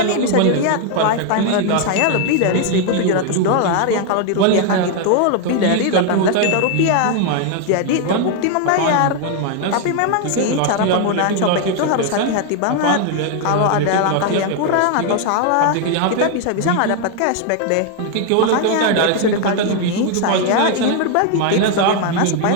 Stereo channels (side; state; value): both; different; correlation 0.00